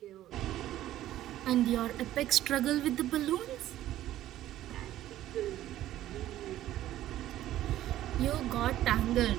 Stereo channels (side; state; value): left; quieter; 13.6 dB